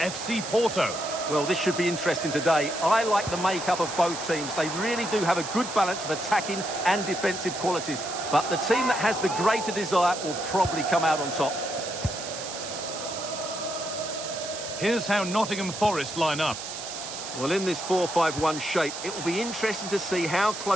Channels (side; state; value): right; noise; hiss, 8 dB below the sound